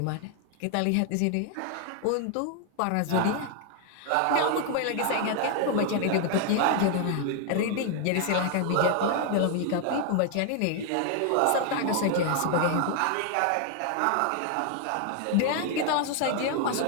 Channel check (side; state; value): both; different; correlation 0.00